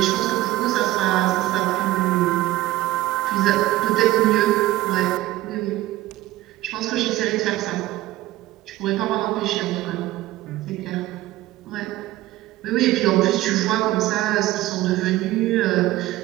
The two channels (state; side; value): quieter; left; 16.4 dB